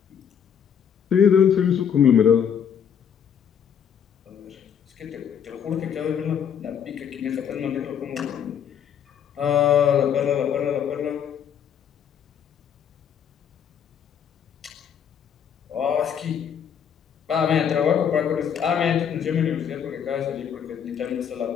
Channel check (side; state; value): right; quieter; 8.1 dB